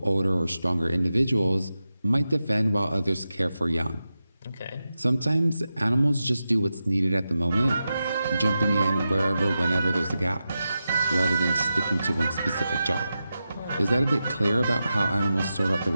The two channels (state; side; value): inverted; both; correlation -0.91